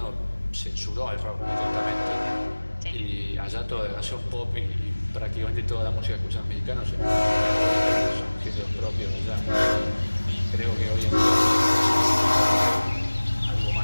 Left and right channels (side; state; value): both; inverted; correlation -1.00